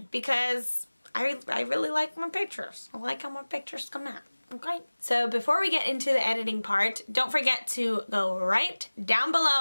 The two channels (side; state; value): both; inverted; correlation -1.00